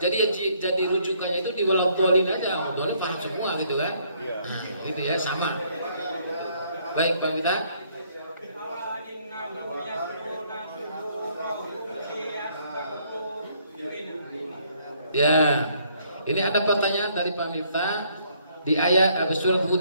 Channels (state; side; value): inverted; both; correlation -0.66